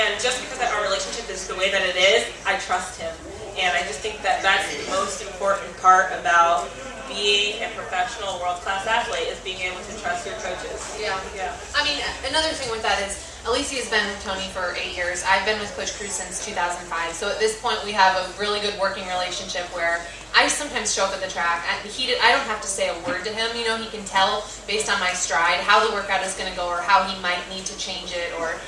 just because our relationship is the way that it is, I trust him. And I just think that that's the most important part about being a professional world-class athlete, is being able to trust your coaches. Yeah. I mean, another thing with that is, Alysia has been with Tony for 8 years. I've been with Coach Cruz since 2005. So at this point, we have a really good working relationship where I sometimes show up at the track. I don't have to say a word to him. You know, he can tell based on my stride how the workout is going to go, or how he might need to change it, or,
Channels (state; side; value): identical; both; correlation 1.00